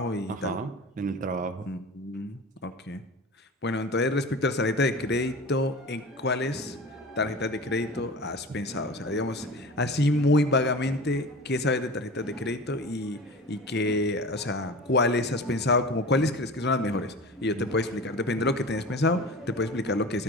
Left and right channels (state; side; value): normal; both; correlation 0.35